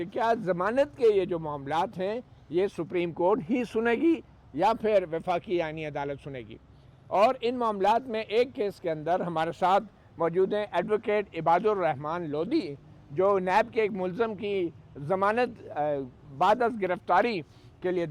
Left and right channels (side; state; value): both; identical; correlation 1.00